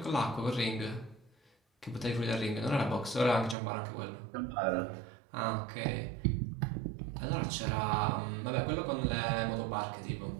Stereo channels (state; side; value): drops out; left; at 3.6 s